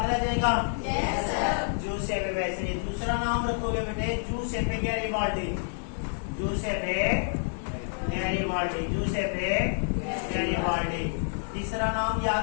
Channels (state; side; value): silent; right; 59 dB below the other